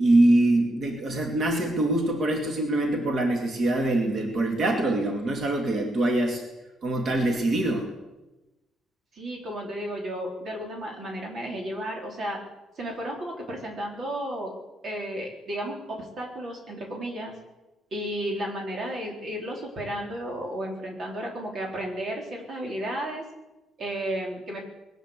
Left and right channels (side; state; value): both; normal; correlation 0.79